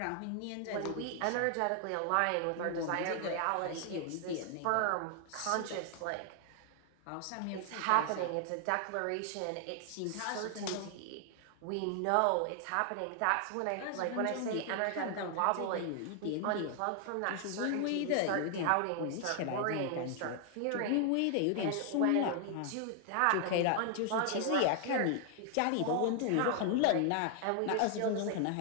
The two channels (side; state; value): both; different; correlation 0.00